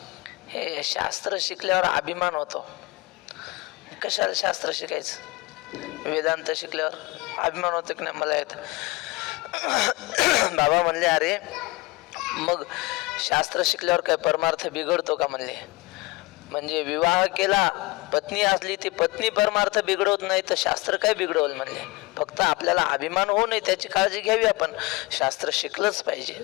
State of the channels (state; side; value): quieter; right; 22.6 dB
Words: हे शास्त्र शिकल्यावर अभिमान होतो. कशाला शास्त्र शिकायचं? वेदांत शिकल्यावर अभिमान होतो की नाही मला येत. बाबा म्हणले अरे मग शास्त्र शिकल्यावर काय परमार्थ बिघडतो का? म्हणले म्हणजे विवाह केला पत्नी असली ती पत्नी परमार्थ बिघडवत नाही तर शास्त्र काय बिघडवल? म्हणले फक्त आपल्याला अभिमान होऊ नये त्याची काळजी घ्यावी. आपण शास्त्र शिकलंच पाहिजे.